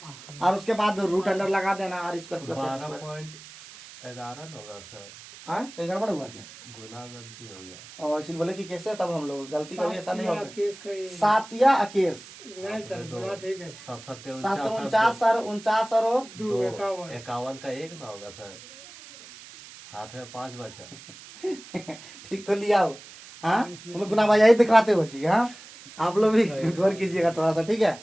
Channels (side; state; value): right; noise; hiss, 18 dB below the sound